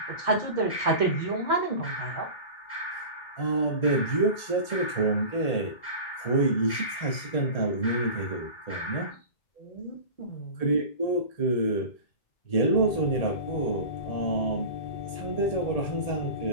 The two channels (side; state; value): right; late; 1.8 ms